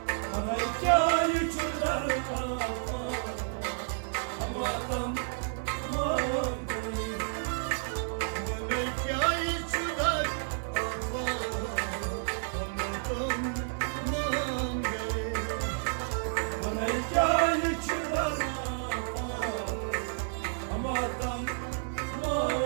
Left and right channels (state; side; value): silent; left; digital silence